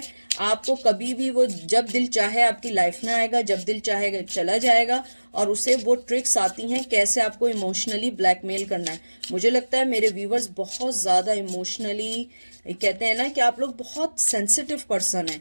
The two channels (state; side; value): inverted; both; correlation -1.00